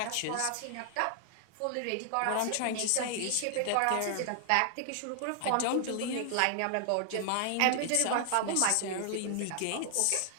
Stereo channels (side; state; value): both; different; correlation 0.00